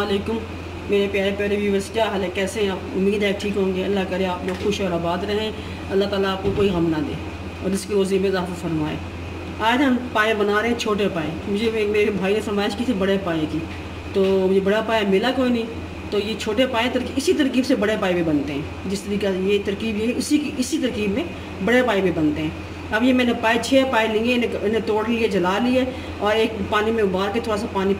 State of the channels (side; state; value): both; identical; correlation 1.00